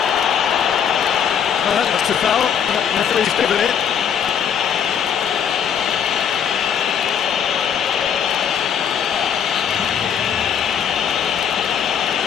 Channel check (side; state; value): right; quieter; 8.1 dB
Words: That's a foul. Referee's given it.